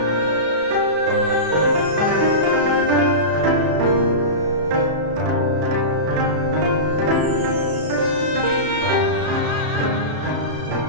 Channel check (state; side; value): late; left; 33 ms